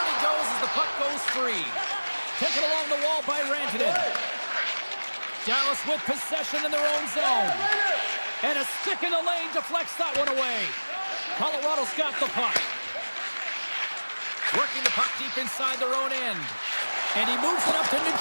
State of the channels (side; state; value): both; inverted; correlation -1.00